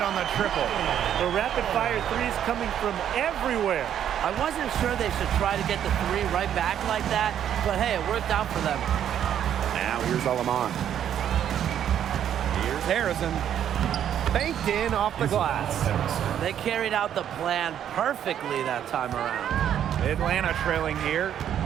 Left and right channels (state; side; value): quieter; left; 9.9 dB